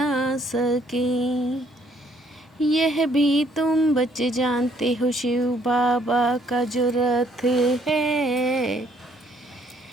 सके। यह भी तुम बच्चे जानते हो, शिव बाबा का जो रथ है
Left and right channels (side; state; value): both; normal; correlation 0.65